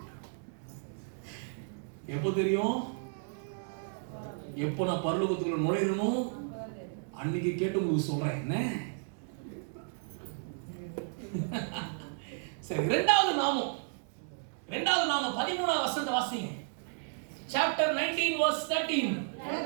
எப்போ தெரியும்? எப்போ நான் பரலோகத்துக்குள்ள நுழையணும் அன்னைக்கு கேட்டு உங்களுக்கு சொல்றேன். என்ன சரி, இரண்டாவது நாமம் 13வது வசனத்தை வாசிங்க. Chapter 19 verse 13.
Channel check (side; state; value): left; silent; digital silence